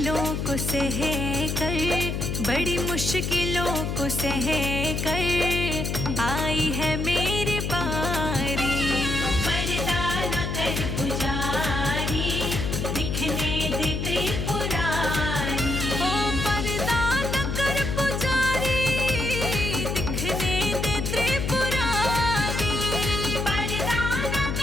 को सह कर, बड़ी मुश्किलों को सह कर आई है मेरी बारी। पर्दा न कर पुजारी, दिखने दे त्रिपुरारी। ओ पर्दा न कर पुजारी, दिखने दे त्रिपुरारी। पर्दा न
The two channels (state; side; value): noise; left; hum, 1 dB below the sound